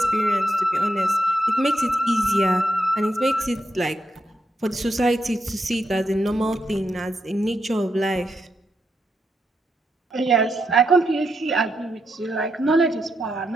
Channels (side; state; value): both; normal; correlation 0.82